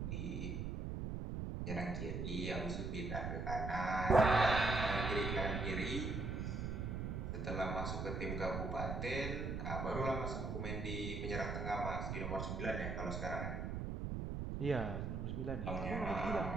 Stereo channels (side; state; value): right; noise; rumble, 3 dB below the sound